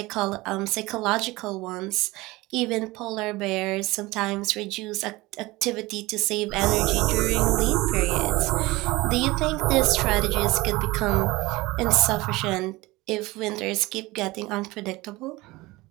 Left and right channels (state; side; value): quieter; left; 20.8 dB